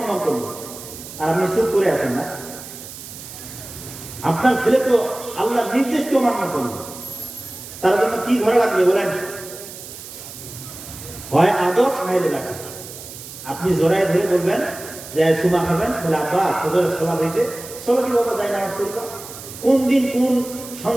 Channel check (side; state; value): right; noise; hiss, 13 dB below the sound